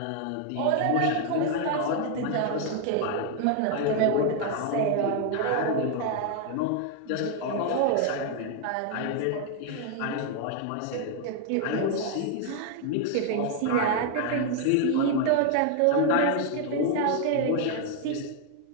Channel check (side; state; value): both; different; correlation 0.00